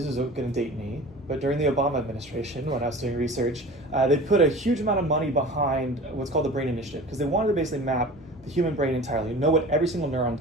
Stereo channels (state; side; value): normal; both; correlation 0.39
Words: is going to date me, but during the Obama administration, when I was doing research, they put a huge amount of money behind what's called the Brain Initiative, because they wanted to basically map the human brain entirely, know what every single